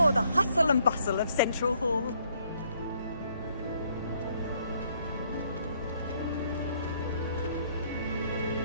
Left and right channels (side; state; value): both; inverted; correlation -0.67